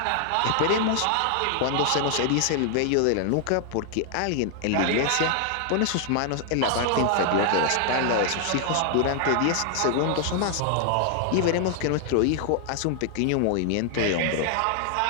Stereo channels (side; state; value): both; different; correlation 0.00